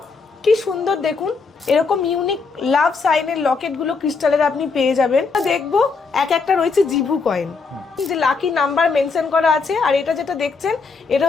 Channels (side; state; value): right; quieter; 4.6 dB